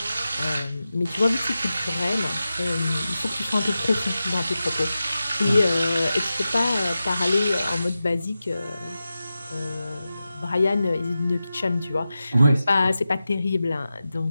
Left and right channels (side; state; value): both; inverted; correlation -0.93